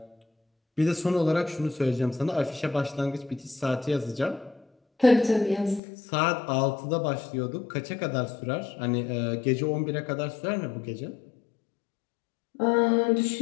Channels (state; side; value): drops out; right; at 5.8 s